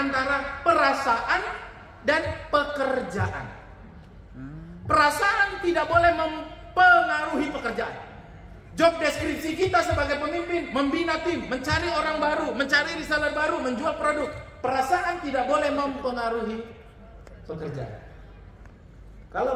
antara perasaan dan pekerjaan. Perasaan tidak boleh mempengaruhi pekerjaan. Job deskripsi kita sebagai pemimpin, membina tim, mencari orang baru, mencari reseller baru, menjual produk. Perasaan tidak boleh mempengaruhi pekerjaan.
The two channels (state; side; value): identical; both; correlation 1.00